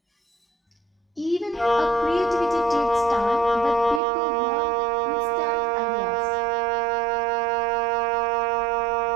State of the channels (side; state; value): left; drops out; at 4.0 s